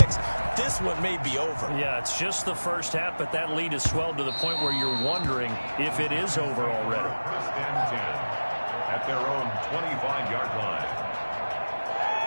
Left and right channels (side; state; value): both; inverted; correlation -1.00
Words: This one may be over. Yeah, it's just the first half, but that lead has swelled to the point where you're wondering if it is over already. First and 10 at their own 25-yard line.